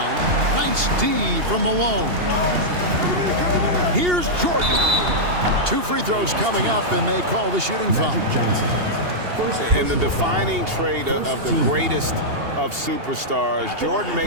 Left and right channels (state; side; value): late; left; 2.8 ms